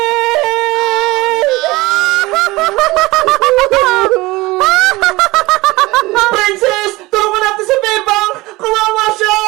Princess! Tulungan natin si Bebang! Kawawa siya!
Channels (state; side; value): quieter; left; 20.8 dB